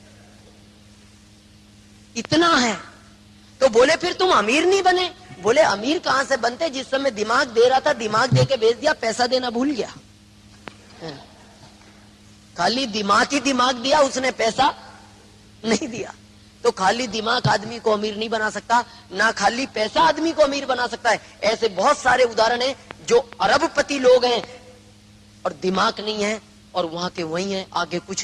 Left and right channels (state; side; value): identical; both; correlation 1.00